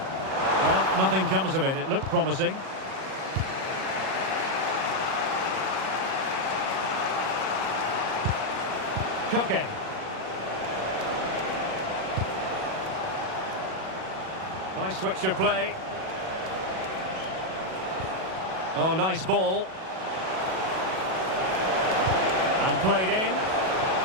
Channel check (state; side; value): late; left; 37 ms